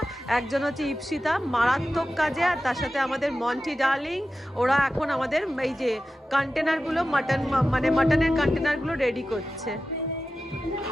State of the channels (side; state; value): both; normal; correlation 0.93